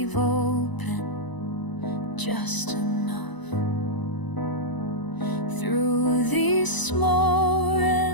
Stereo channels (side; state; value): right; late; 1.0 ms